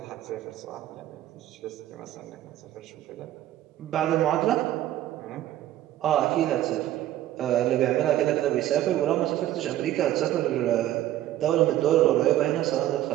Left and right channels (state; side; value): quieter; left; 13.4 dB